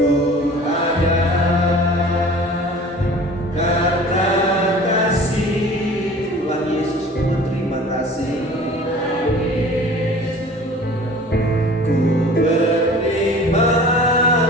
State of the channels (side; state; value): both; normal; correlation 0.44